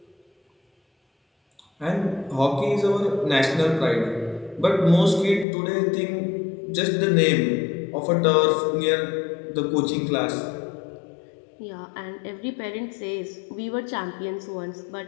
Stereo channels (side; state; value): right; drops out; at 5.5 s